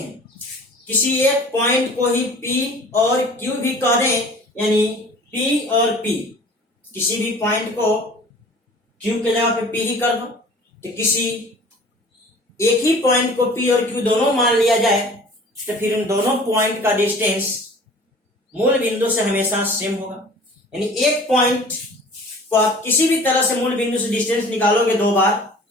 किसी एक पॉइंट को ही P और Q भी कह दें, यानी P और P, किसी भी पॉइंट को Q के जगह पे P ही कर दो। तो किसी एक ही पॉइंट को P और Q दोनों मान लिया जाए तो फिर उन दोनों पॉइंट का डिस्टेंस मूल बिंदु से हमेशा सेम होगा। यानी एक पॉइंट को आप किसी भी तरह से मूल बिंदु से डिस्टेंस निकालोगे दो बार,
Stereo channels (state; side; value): normal; both; correlation 0.46